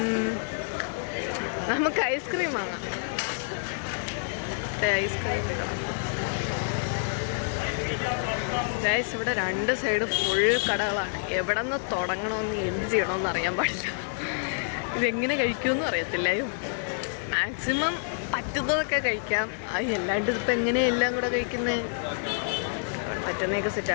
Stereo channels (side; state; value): right; silent; 59 dB below the other